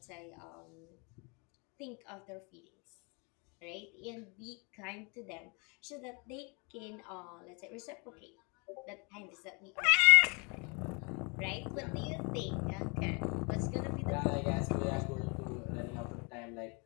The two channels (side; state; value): right; quieter; 32.1 dB